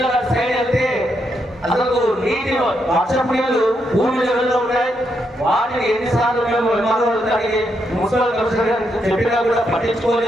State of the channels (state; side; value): normal; both; correlation 0.80